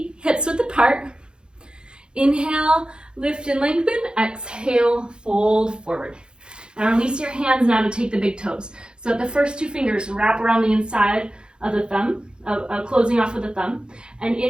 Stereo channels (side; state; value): left; late; 0.050 ms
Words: hips width apart. Inhale, lift and lengthen. Exhale, fold forward. Now release your hands now to take the big toes. So the first two fingers wrap around the inside of the thumb, closing off with the thumb. And